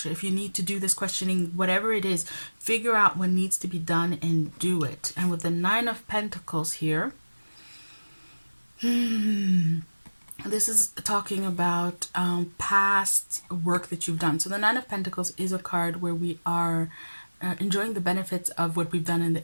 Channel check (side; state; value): both; inverted; correlation -1.00